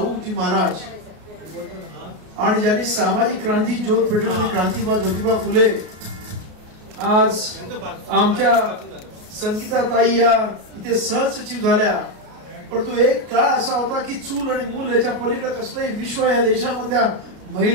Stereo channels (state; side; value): late; left; 33 ms